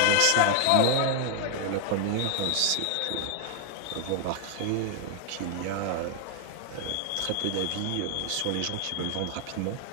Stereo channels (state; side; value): different; both; correlation 0.00